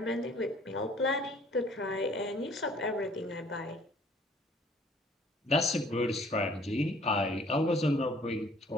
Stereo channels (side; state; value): both; normal; correlation 0.56